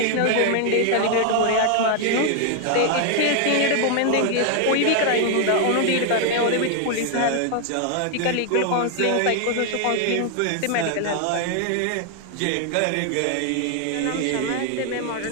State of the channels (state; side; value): different; both; correlation 0.00